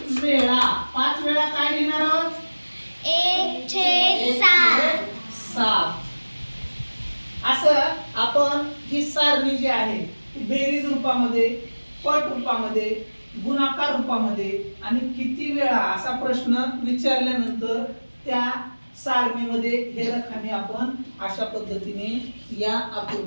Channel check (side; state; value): both; inverted; correlation -1.00